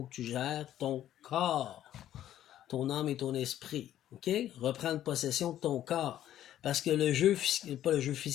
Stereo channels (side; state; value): right; quieter; 12.0 dB